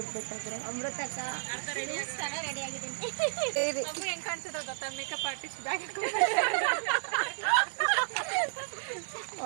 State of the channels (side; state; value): left; silent; digital silence